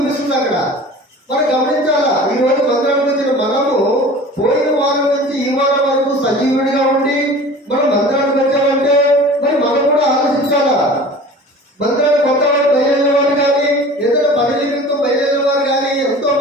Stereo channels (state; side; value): normal; both; correlation 0.41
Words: అక్కడ. మనం గమనించాలా. ఈ రోజు మందిరానికి వచ్చిన మనము పోయిన వారం నుంచి ఈ వారం వరకు సజీవుడిగా ఉండి మనం మందిరానికి వచ్చామంటే మరి మనం కూడా ఆలోచించాలా. మందిరానికి కొత్త వారు బయలుదేరిన వారు కానీ ఏదైనా పని నిమిత్తం బయలుదేరిన వారు కానీ ఎంతో